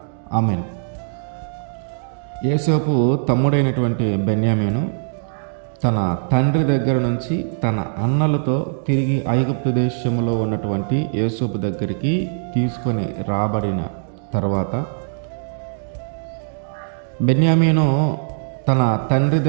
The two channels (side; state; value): left; silent; 65 dB below the other